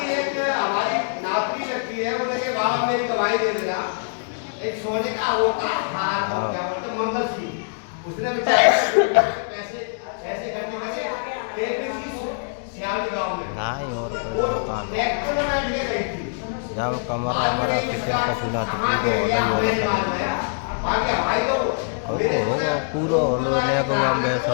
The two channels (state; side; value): silent; right; digital silence